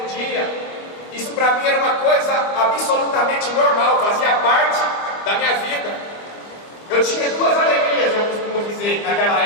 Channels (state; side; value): late; right; 25 ms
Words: dia. Isso para mim era uma coisa absolutamente normal, fazia parte da minha vida. Eu tinha 2 alegrias, eu costumo dizer, naquela